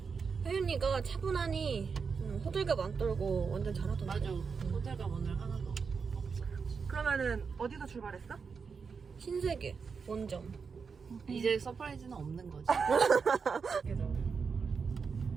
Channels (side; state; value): left; quieter; 5.5 dB